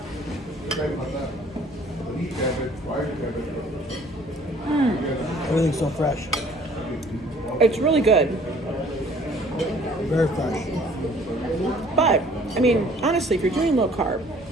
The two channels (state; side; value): normal; both; correlation 0.55